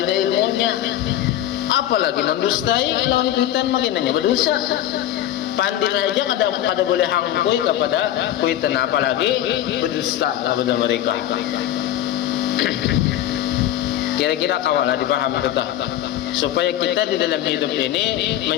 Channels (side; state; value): right; quieter; 12.4 dB